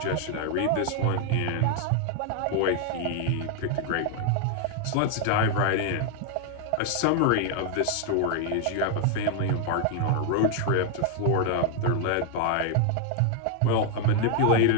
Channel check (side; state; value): both; different; correlation 0.00